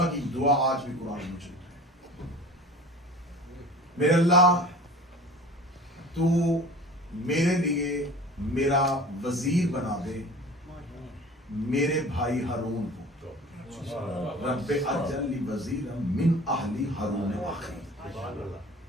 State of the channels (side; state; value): both; normal; correlation 0.41